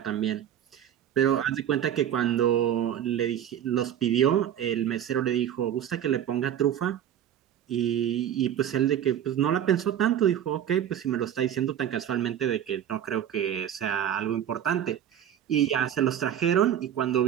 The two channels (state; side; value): quieter; left; 10.2 dB